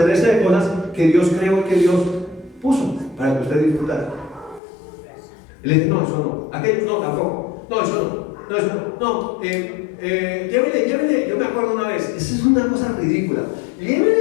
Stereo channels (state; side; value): drops out; right; at 4.6 s